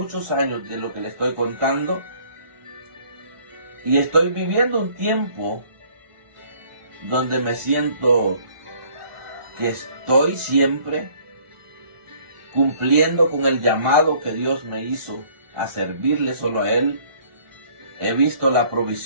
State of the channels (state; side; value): late; left; 1.4 ms